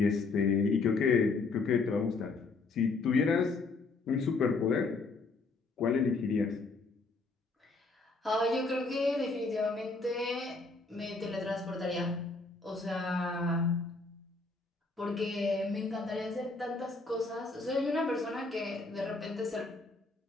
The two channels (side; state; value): right; quieter; 3.8 dB